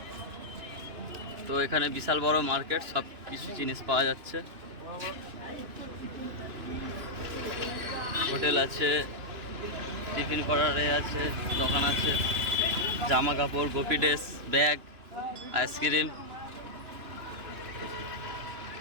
তো এখানে বিশাল বড় মার্কেট, সব কিছু জিনিস পাওয়া যাচ্ছে। হোটেল আছে, টিফিন করার আছে, দোকান আছে, জামা কাপড়, গোপি ড্রেস, ব্যাগ, আইসক্রিম।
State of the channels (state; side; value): late; left; 2.9 ms